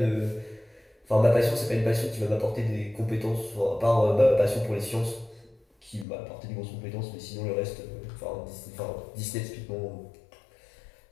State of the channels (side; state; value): right; drops out; at 6.1 s